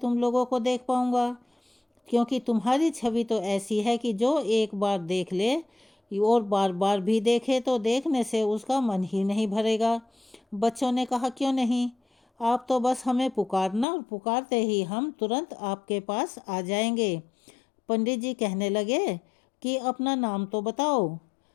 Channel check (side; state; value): right; drops out; at 13.9 s